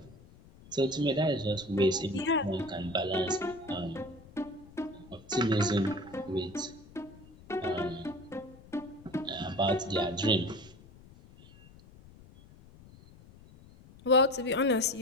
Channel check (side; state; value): left; noise; rumble, 22 dB below the sound